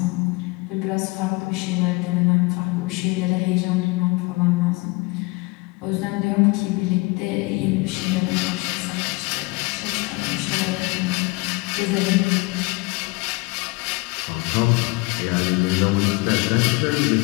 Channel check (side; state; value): right; quieter; 25.3 dB